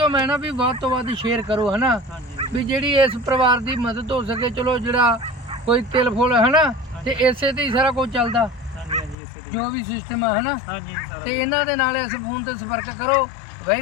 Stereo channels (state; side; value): drops out; right; at 9.2 s